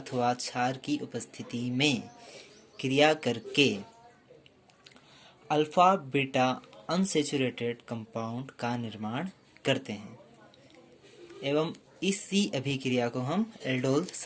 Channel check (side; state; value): both; identical; correlation 1.00